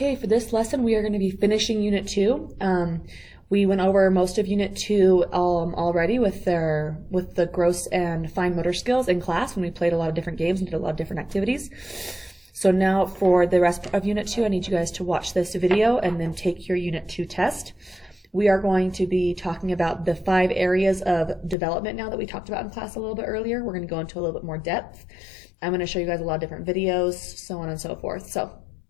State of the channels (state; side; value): drops out; right; at 21.6 s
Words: for this lesson, we are going to be finishing Unit 2. We went over most of Unit 2 already with the gross and fine motor skills in class when we played a lot of different games and did a lot of different activities. So now for the rest of Unit 2, I need you guys to watch this video and then take your Unit 2 test. We are going to be talking about the 5 areas of development now that we talked about in class a little bit earlier. We're going to go into a little bit more depth. I'm going to show you guys a lot of different videos, so on and so forth. So